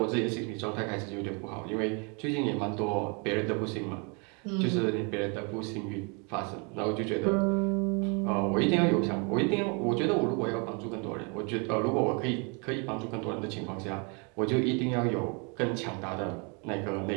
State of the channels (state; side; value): quieter; left; 33.6 dB